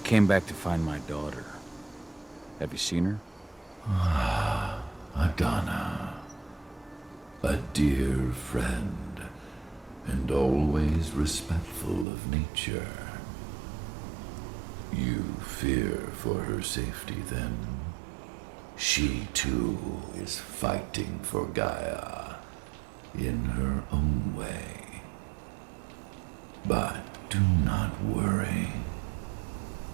back to find my daughter. Have you seen her? Adana, a dear friend, and always respectful of nature. You fear for her safety, then? She, too, is fighting for Gaia, in her own way. But do not worry.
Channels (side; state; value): left; drops out; at 12.1 s